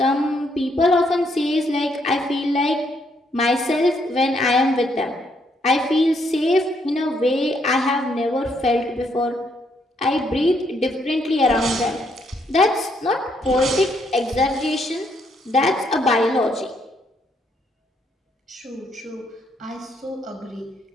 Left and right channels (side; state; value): both; normal; correlation 0.73